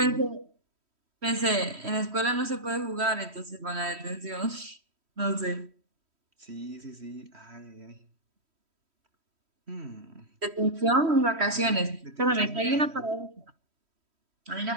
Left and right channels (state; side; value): late; left; 3.1 ms